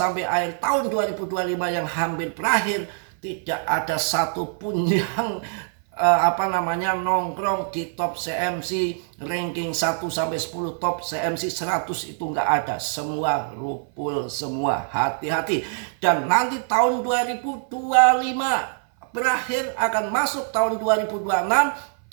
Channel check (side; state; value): left; silent; 58 dB below the other